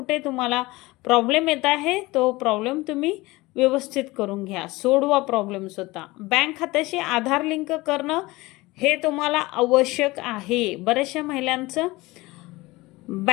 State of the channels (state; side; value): quieter; right; 21.0 dB